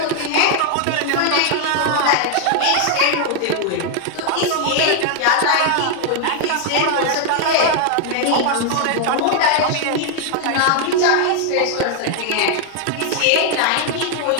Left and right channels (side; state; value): both; different; correlation 0.00